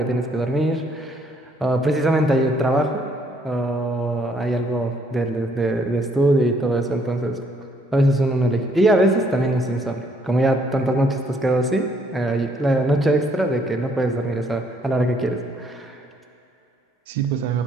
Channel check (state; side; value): normal; both; correlation 0.67